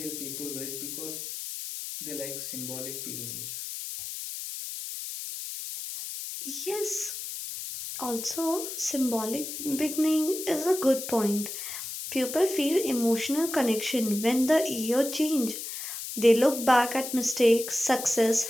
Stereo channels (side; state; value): left; noise; hiss, 7 dB below the sound